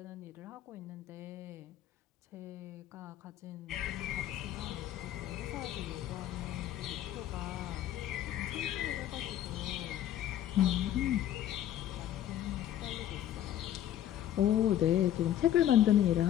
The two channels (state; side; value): quieter; right; 11.8 dB